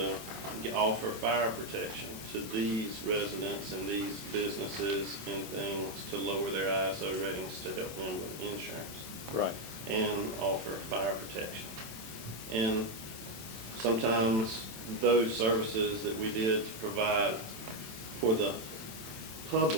offer fire protection to these residents and these businesses and things to lower their ISO ratings to help them with insurance Right. and offer fire protection. And sometimes those services that we did to provide for the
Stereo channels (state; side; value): late; left; 27 ms